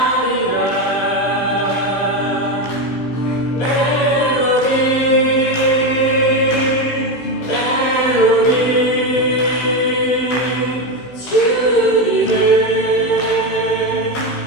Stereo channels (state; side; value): late; right; 16 ms